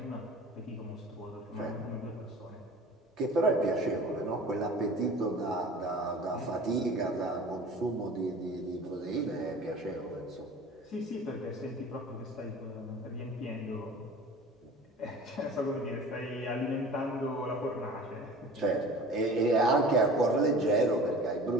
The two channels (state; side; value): normal; both; correlation 0.41